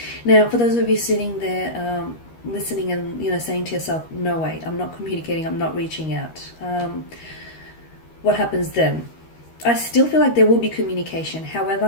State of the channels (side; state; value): right; late; 13 ms